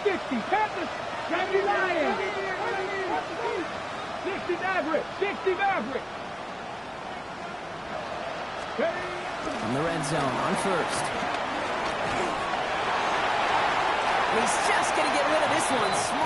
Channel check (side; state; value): both; identical; correlation 1.00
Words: 60, Panther 70 Lions. 60 Maverick, 60 Maverick. From the red zone on 1st. He's just going to get rid of this one.